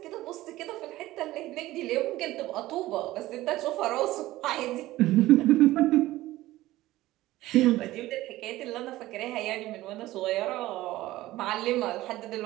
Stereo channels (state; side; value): quieter; left; 16.7 dB